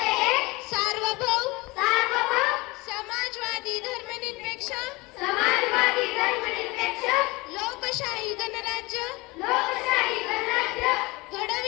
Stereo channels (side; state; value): right; quieter; 23.5 dB